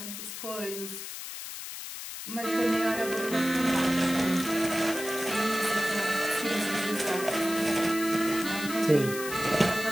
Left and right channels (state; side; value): noise; left; hiss, 9 dB below the sound